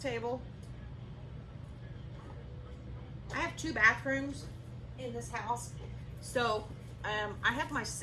I have 2 bathrooms in this house. So I have my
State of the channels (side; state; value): both; identical; correlation 1.00